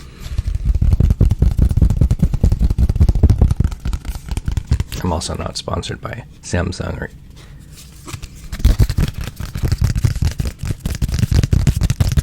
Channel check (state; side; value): identical; both; correlation 1.00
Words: I'm also not sponsored by Samsung or